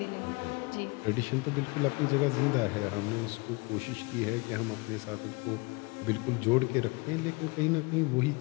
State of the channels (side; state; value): right; quieter; 27.7 dB